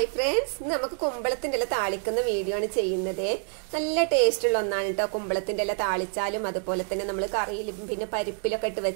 friends, നമുക്ക് കുമ്പളത്തിന്റെ ഇല താളിക്കുന്ന video ആണ് ചെയ്യുന്നത്. നല്ല ടേസ്റ്റ് ഉള്ള ഒന്നാണ് കേട്ടോ. കുമ്പളത്തിന്റെ ഇല താളിച്ചാലും അതുപോലെ തന്നെ നമ്മൾ കറിയിലും പിന്നെ പരിപ്പിലൊക്കെ ഇട്ട്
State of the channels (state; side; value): silent; left; 60 dB below the other